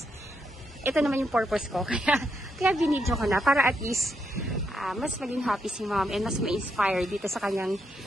ito naman yung purpose ko. Kaya binidyo ko na. Para at least, mas maging happy si Ma'am and mas ma-inspire dito sa kanyang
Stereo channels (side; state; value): both; normal; correlation 0.80